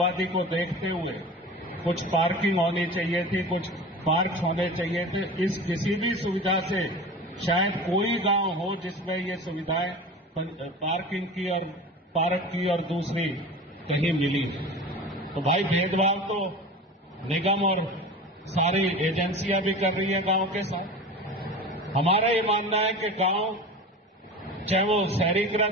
को देखते हुए कुछ पार्किंग होनी चाहिए थी, कुछ पार्क होने चाहिए थे। इस किसी भी सुविधा से शायद कोई गांव हो जिसमें ये सुविधाएं पार्किंग की और पार्क की और दूसरी कहीं मिली। तो भाई भेदभाव तो निगम और सारी एजेंसियां भी कर रही है गांव के साथ। हमारा ये मानना है कि गांव चाहे वो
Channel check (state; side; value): normal; both; correlation 0.34